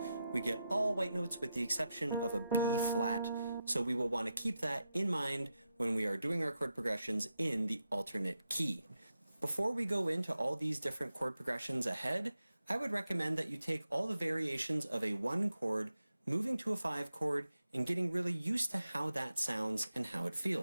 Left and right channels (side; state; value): both; inverted; correlation -0.88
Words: we get all white notes with the exception of a B flat, so we will want to keep that in mind when we are doing our chord progressions in the alternate key. Before we go into all these different chord progressions ahead, I would recommend that you take all the variations of a 1 chord, moving to a 5 chord, and getting really used to how that sounds and how it